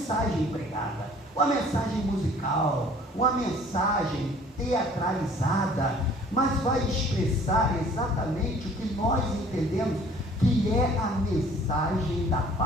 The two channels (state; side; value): normal; both; correlation 0.53